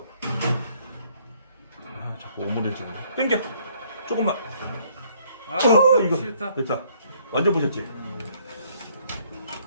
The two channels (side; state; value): both; inverted; correlation -0.64